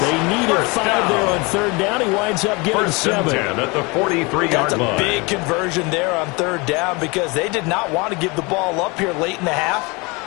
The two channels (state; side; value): quieter; right; 27.3 dB